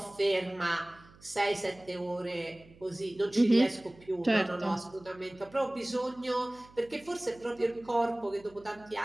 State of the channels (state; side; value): noise; right; hum, 24 dB below the sound